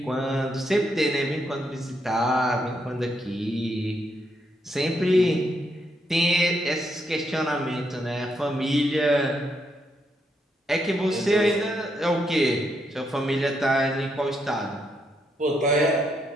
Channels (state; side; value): normal; both; correlation 0.78